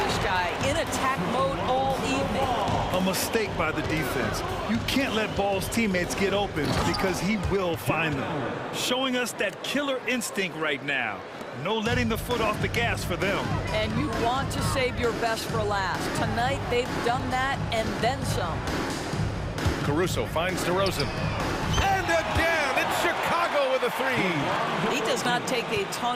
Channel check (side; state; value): both; identical; correlation 1.00